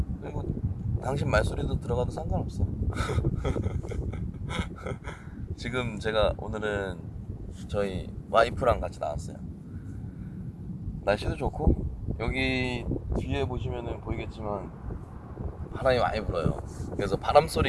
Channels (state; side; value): identical; both; correlation 1.00